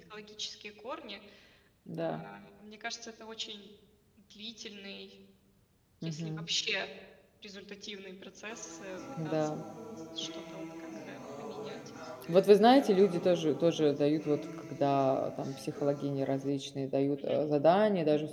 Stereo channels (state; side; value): identical; both; correlation 1.00